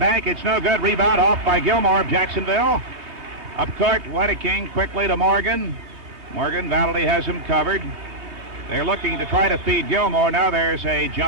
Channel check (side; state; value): left; late; 2.8 ms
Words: It's no good. Rebound off by Gilmore of Jacksonville. Up court, Wedeking quickly to Morgan. Morgan, Valley has him covered. They're looking to try to feed Gilmore. Now there's a